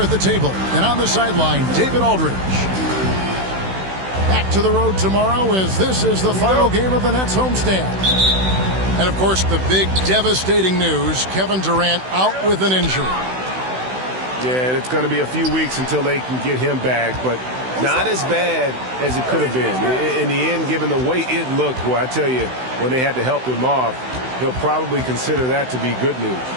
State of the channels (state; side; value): late; left; 16 ms